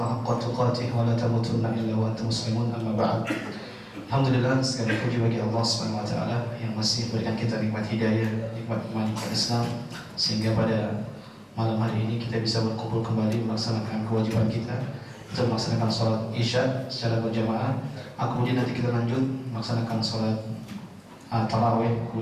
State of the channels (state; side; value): identical; both; correlation 1.00